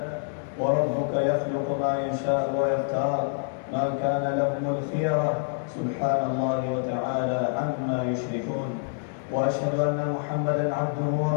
وربك يخلق ما يشاء ويختار، ما كان لهم الخيرة سبحان الله وتعالى عما يشركون. وأشهد أن محمدا عبده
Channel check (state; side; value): silent; right; digital silence